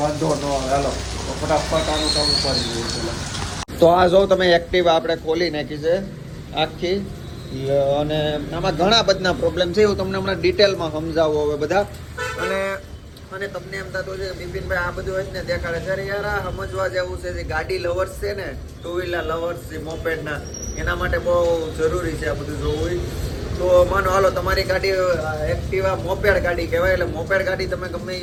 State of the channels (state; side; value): identical; both; correlation 1.00